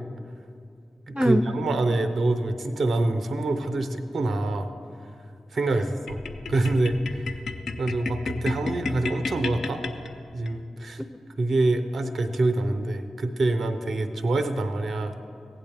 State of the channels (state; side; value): normal; both; correlation 0.93